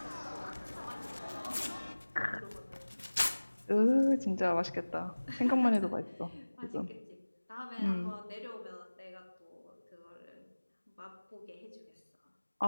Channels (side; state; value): both; inverted; correlation -1.00